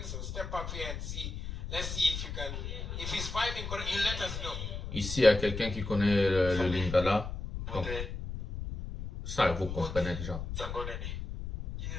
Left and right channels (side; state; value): left; noise; rumble, 6 dB below the sound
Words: So step up here and see. Let's see if you can. If he's vibing, you let us know. Ici, il y a quelqu'un qui connaît le lingala. Donc, ça, vous comprenez déjà.